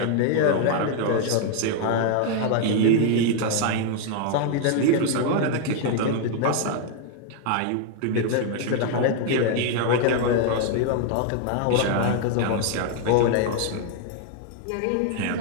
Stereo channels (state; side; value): different; both; correlation 0.00